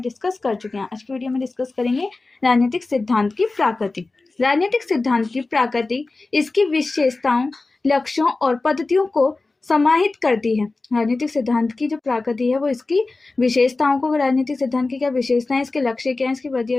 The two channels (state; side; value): quieter; right; 3.5 dB